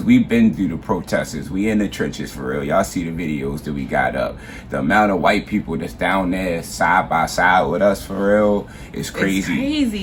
we've been through the protesters, we in the trenches for real. Y'all see the videos that we got up. The amount of white people that's down there side by side with us for real is crazy. It's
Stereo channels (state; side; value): identical; both; correlation 1.00